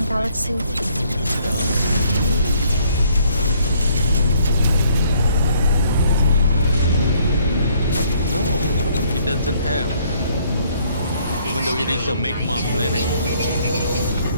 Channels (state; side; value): inverted; both; correlation -0.64